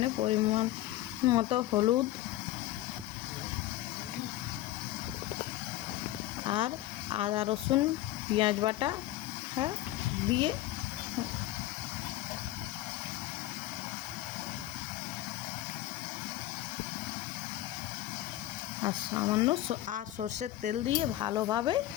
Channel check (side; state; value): right; quieter; 14.8 dB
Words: পরিমাণ মতো হলুদ আর আদা, রসুন, পেঁয়াজ বাটা দিয়ে আর সামান্য সর্ষের তেল দিয়ে ভালোভাবে